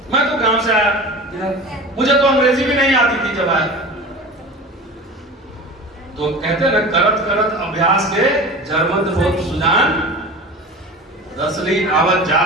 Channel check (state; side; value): normal; both; correlation 0.35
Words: मैं तो गांव से आया, मुझे तो अंग्रेजी भी नहीं आती थी जब आया। तो कहते ना, करत अभ्यास के जरमत होत सुजान, रसली आवत